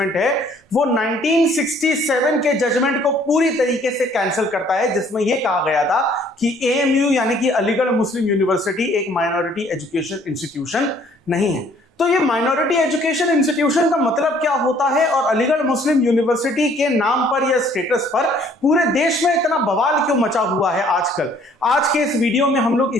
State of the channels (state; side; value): normal; both; correlation 0.59